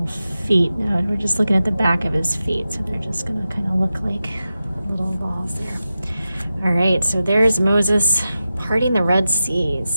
feet. Now we're just looking at the back of his feet, so they're just going to kind of look like little balls there. All right, so there's Moses parting the Red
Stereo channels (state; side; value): inverted; both; correlation -0.92